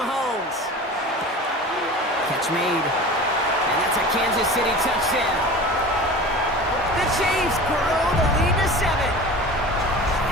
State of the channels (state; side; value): normal; both; correlation 0.36